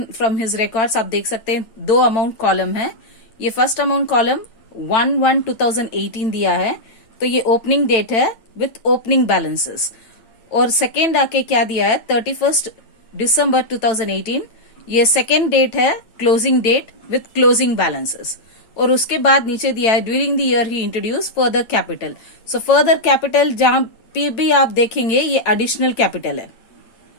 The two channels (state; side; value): late; right; 9.0 ms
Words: from his records आप देख सकते हैं। दो अमाउंट कॉलम है। ये फर्स्ट अमाउंट कॉलम 1/1/2018 दिया है, तो ये ओपनिंग डेट है विथ ओपनिंग बैलेंसेस। और सेकेंड आके क्या दिया है 31 दिसंबर 2018, ये सेकेंड डेट है closing date with closing balances. और उसके बाद नीचे दिया है during the year he introduce further capital. So further capital जहां पे भी आप देखेंगे ये एडिशनल कैपिटल है,